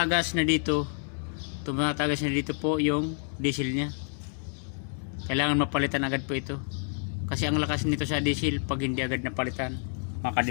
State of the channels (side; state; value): right; silent; 59 dB below the other